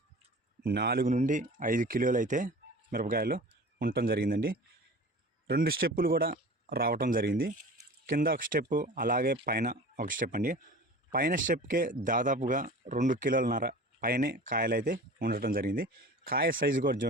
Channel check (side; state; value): both; normal; correlation 0.39